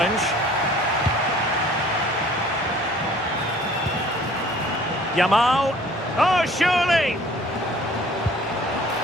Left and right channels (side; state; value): both; normal; correlation 0.52